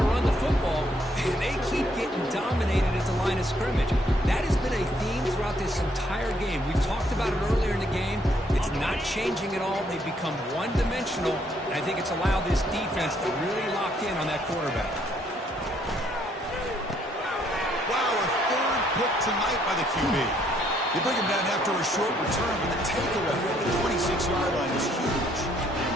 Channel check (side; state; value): both; normal; correlation 0.69